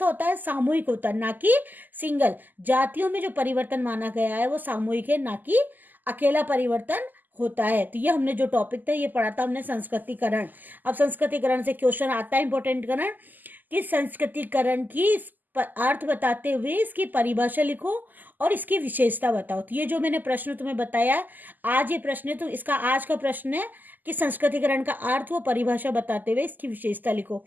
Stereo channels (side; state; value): left; late; 0.086 ms